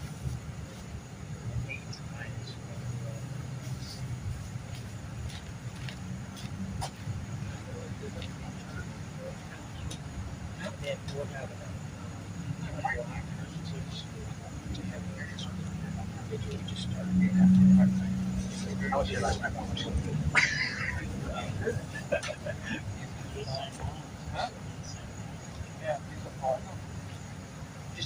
8 to 9. And we'll have I was here last night.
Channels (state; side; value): identical; both; correlation 1.00